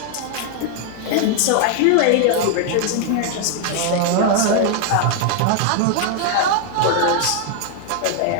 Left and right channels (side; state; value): both; different; correlation 0.00